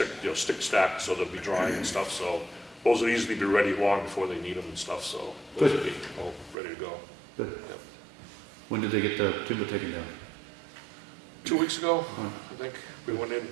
stacked, so they'll be drying and stuff. So those will easily be ready long before they need them and stuff. So those will be all ready to go. Good. Yep. When did they get the timber taken down? 2 weeks ago, I think we went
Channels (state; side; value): drops out; left; at 6.6 s